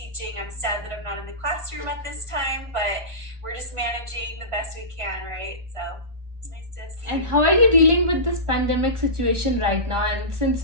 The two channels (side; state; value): left; late; 1.4 ms